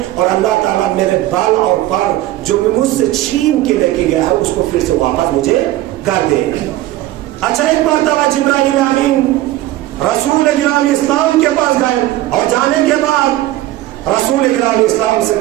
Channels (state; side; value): quieter; left; 15.5 dB